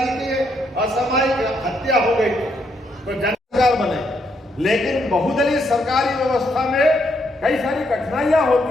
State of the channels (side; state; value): both; normal; correlation 0.75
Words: की असामयिक हत्या हो गई तो जन सरकार बने। लेकिन बहुदलीय सरकारी व्यवस्था में कई सारी कठिनाइयां